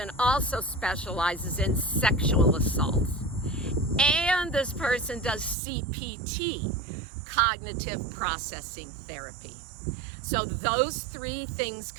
also specializes in sexual assaults. And this person does CPT, cognitive processing therapy. So those three things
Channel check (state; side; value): drops out; left; at 5.6 s